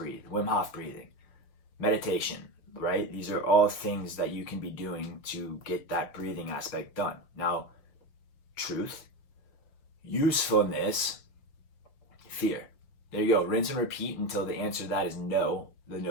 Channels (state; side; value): late; right; 6.2 ms